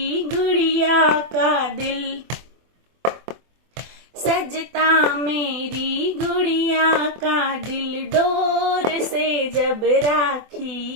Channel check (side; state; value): left; late; 24 ms